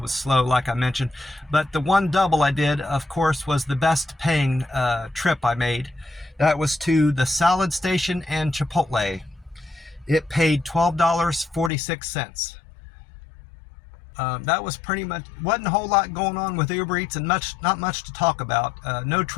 slow, like I mentioned. But the one double I did, of course, was the best paying trip I made. That was to the Salad Station and Chipotle. It paid $12.46. That was pretty much, wasn't a whole lot going on with Uber Eats, and not much to talk about. No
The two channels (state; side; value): drops out; right; at 11.7 s